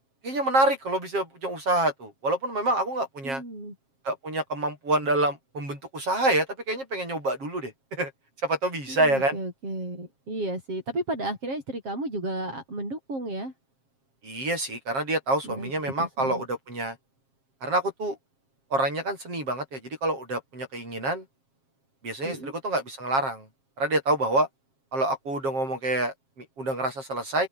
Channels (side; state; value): left; late; 7.4 ms